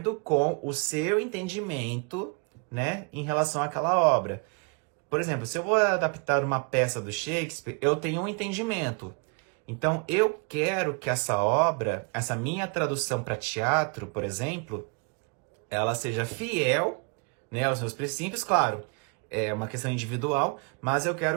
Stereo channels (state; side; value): quieter; left; 33.5 dB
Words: com o seu entendimento, né, em relação àquela obra. Por exemplo, se eu vou adaptar uma peça do Shakespeare, eu tenho um entendimento. Então, eu quero que essa obra, essa minha tradução para teatro, por exemplo, ela seja fiel, né, aos meus princípios, claro, é uma questão individual, mas eu